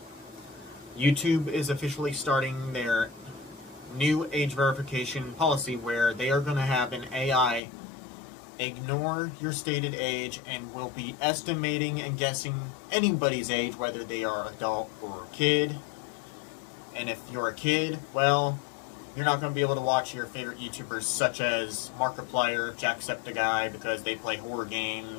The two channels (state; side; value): drops out; right; at 7.6 s